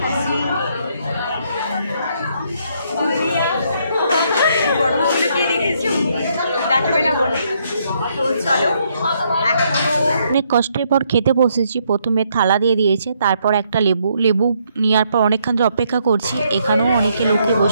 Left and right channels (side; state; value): both; inverted; correlation -0.73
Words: অনেক কষ্টের পর খেতে বসেছি। প্রথমে থালা দিয়ে দিয়েছে, তারপর একটা লেবু নেওয়ার পর অনেকক্ষণ ধরে অপেক্ষা করছি। এখানেও অনেকে লোকে